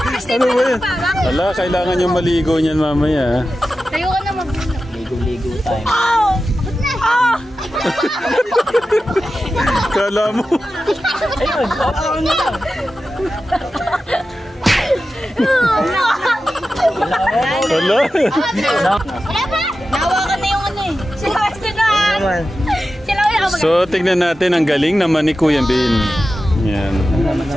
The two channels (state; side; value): normal; both; correlation 0.93